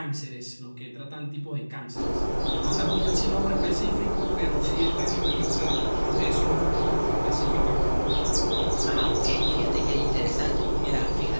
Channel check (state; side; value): inverted; both; correlation -1.00